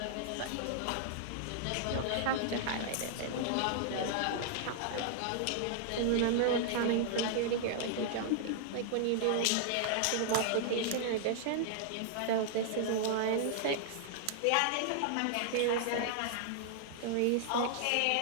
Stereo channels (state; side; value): different; both; correlation -0.01